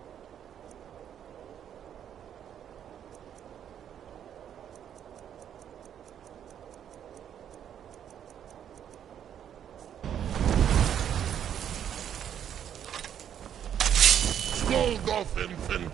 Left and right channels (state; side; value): quieter; left; 9.4 dB